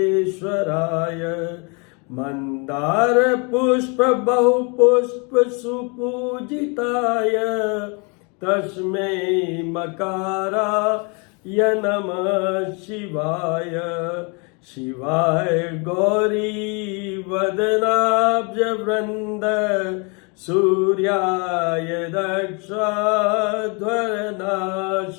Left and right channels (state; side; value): quieter; right; 33.0 dB